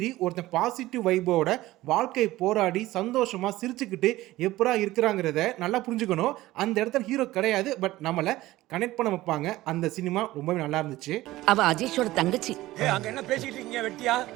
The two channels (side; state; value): left; quieter; 17.0 dB